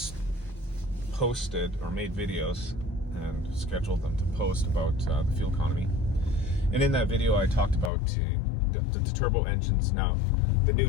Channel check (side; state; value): right; drops out; at 7.9 s